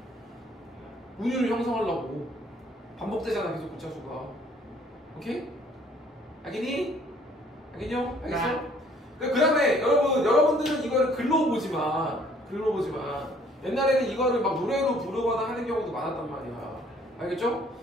운율을 형성하려고 반복되잖아 계속 글자 수가. 오케이? 알겠니? 알겠냐? 알겠어? 그 다음에 여러분들은 이거를 글로 보지만 옛날에는 이거를 막 노래로 부르거나 하는 경우도 많았단 말이야. 알겠죠?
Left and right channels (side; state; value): both; normal; correlation 0.59